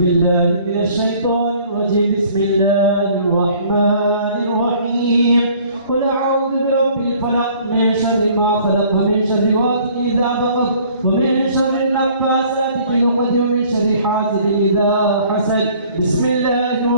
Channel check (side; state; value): both; inverted; correlation -0.55